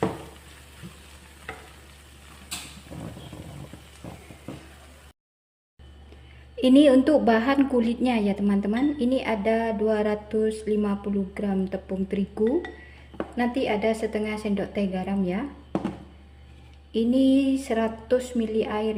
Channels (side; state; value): both; identical; correlation 1.00